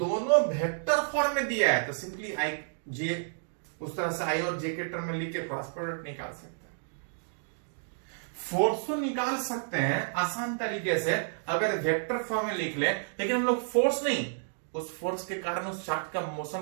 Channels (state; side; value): silent; left; digital silence